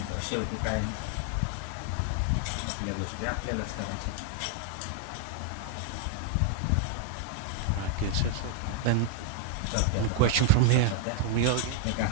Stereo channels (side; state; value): both; different; correlation 0.00